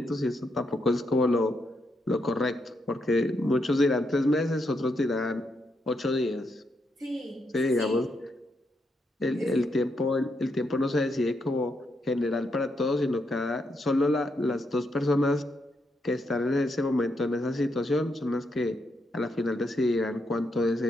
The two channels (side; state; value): both; normal; correlation 0.80